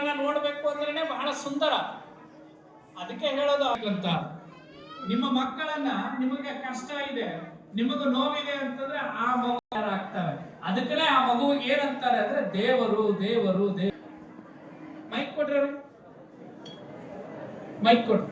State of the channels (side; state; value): both; identical; correlation 1.00